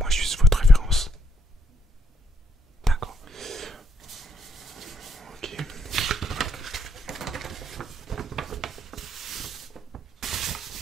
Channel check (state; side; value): normal; both; correlation 0.73